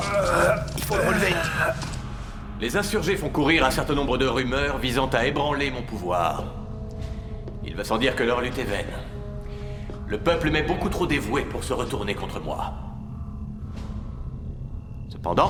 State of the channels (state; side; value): identical; both; correlation 1.00